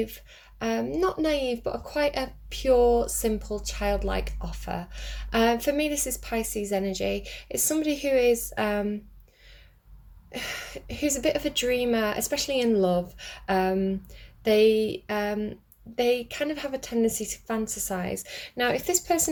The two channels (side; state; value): both; identical; correlation 1.00